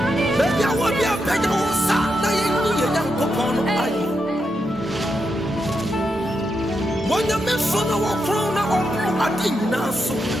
Baby I want be a better sa na yenu ye Nyankopon aye. Wonya me so na wo kron na opo ade nyina so.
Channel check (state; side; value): normal; both; correlation 0.84